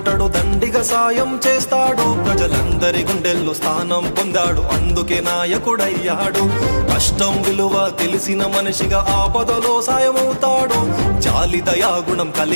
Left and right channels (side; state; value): both; inverted; correlation -1.00